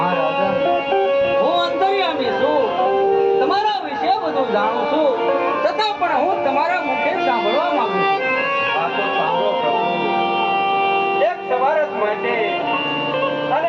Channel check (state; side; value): identical; both; correlation 1.00